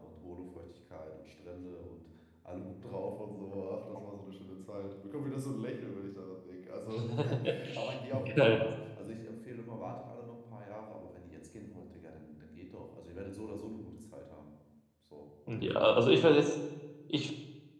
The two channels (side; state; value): both; identical; correlation 1.00